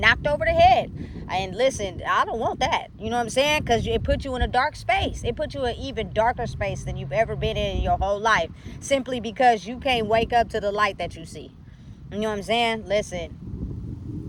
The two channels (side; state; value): both; identical; correlation 1.00